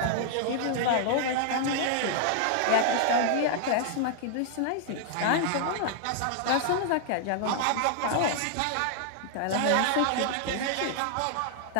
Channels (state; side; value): different; both; correlation -0.01